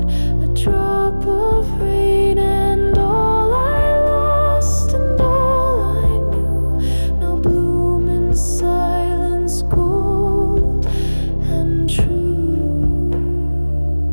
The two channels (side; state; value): both; inverted; correlation -1.00